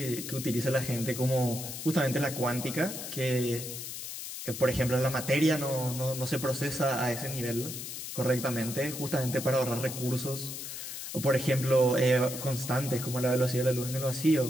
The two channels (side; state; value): left; noise; hiss, 8 dB below the sound